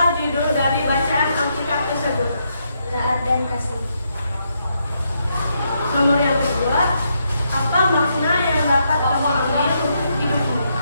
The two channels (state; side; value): inverted; both; correlation -0.79